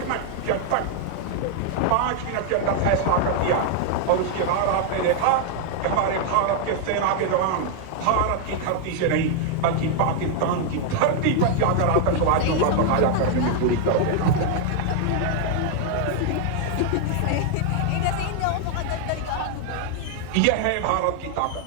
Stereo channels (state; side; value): different; both; correlation 0.00